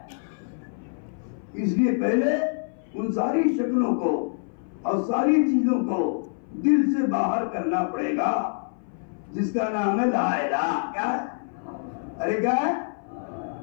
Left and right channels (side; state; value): right; silent; 58 dB below the other